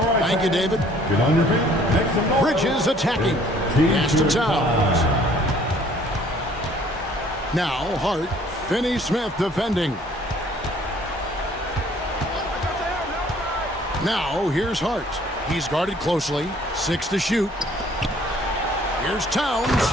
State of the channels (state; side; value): normal; both; correlation 0.57